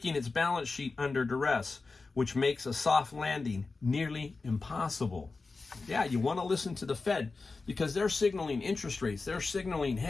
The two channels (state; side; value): quieter; right; 4.0 dB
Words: its balance sheet under duress, which makes a soft landing nearly impossible. Yeah, you want to listen to the Fed, because they're signaling interest rates. They're signaling,